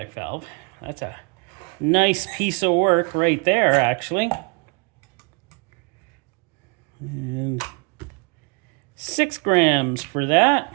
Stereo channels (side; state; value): left; quieter; 31.1 dB